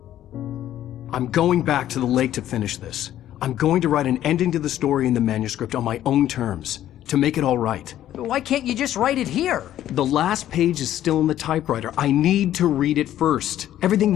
I'm going back to the lake to finish this. I'm going to write an ending to the story in the manuscript on my own terms, to make it all right. Why can't you just write it here? The last page is still in the typewriter. I need to read it first. Everything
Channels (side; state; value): right; quieter; 12.2 dB